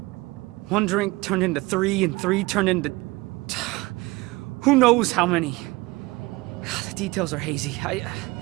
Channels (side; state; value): left; quieter; 22.2 dB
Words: one drink turned into 3, and 3 turned into... who knows how many. The details are hazy.